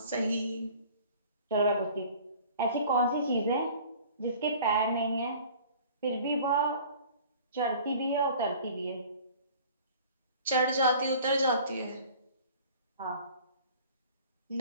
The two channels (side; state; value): both; inverted; correlation -0.47